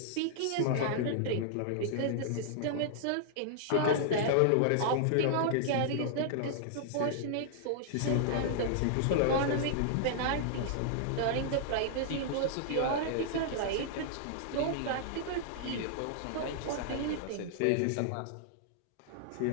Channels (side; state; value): both; different; correlation -0.01